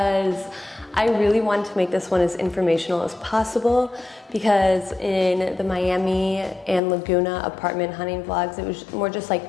I really wanted to make this one as informational as possible, because in the Miami and Laguna apartment hunting vlogs, it was more just like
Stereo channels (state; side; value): drops out; right; at 6.8 s